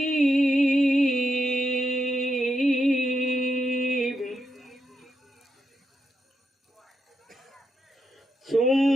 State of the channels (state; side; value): normal; both; correlation 0.82